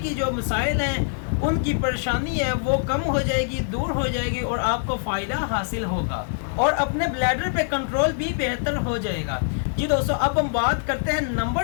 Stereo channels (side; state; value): right; silent; digital silence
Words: جو مسائل ہیں ان کی پریشانی ہے وہ کم ہو جائے گی، دور ہو جائے گی، اور آپ کو فائدہ حاصل ہوگا، اور اپنے بلیڈر پہ کنٹرول بھی بہتر ہو جائے گا۔ جی دوستو، اب ہم بات کرتے ہیں